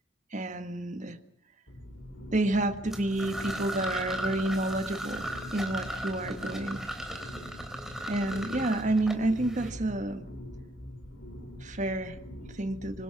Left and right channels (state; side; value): normal; both; correlation 0.68